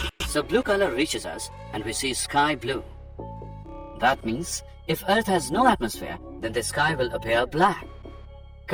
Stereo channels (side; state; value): both; identical; correlation 1.00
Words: So blue color reaches us and we see sky blue. That means if Earth has no atmosphere, then the sky will appear black.